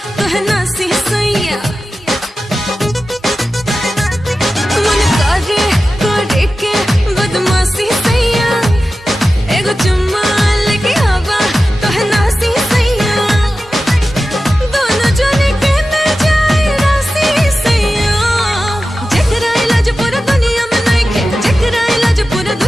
तोहे नासी सैया मन करे के बदमाशी सैया एगो चुम्मा लेके आवा तोहे नासी सैया दोनों जने के न जाए रासी सैया जेकरा इलाज पूरा दुनिया में नइखे जेकरा इलाज पूरा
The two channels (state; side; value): normal; both; correlation 0.94